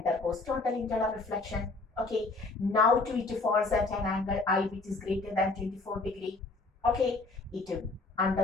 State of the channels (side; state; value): right; quieter; 3.4 dB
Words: total internal reflection. Okay, now to it falls at an angle I which is greater than 24 degree. Okay, it